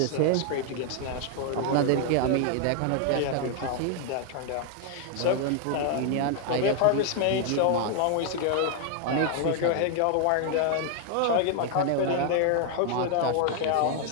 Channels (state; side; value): different; both; correlation 0.00